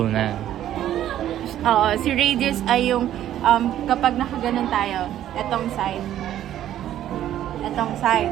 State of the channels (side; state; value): left; quieter; 11.8 dB